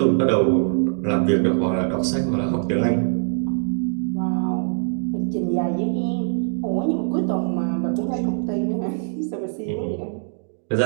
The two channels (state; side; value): silent; left; digital silence